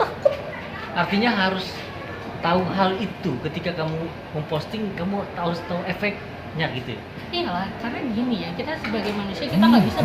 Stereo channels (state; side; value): identical; both; correlation 1.00